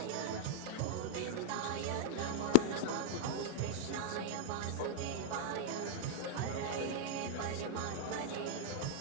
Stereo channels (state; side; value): different; both; correlation 0.00